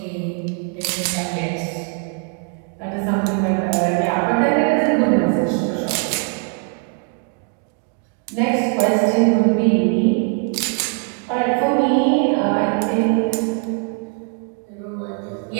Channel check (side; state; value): left; quieter; 39.3 dB